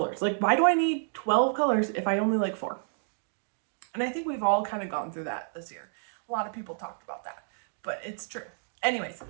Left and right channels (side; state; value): left; silent; digital silence